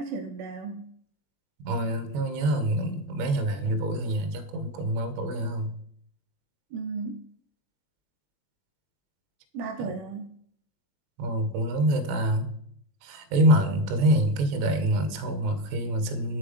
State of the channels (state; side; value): late; left; 21 ms